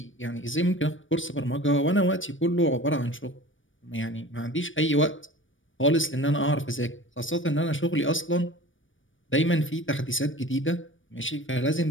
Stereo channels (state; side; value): late; right; 0.57 ms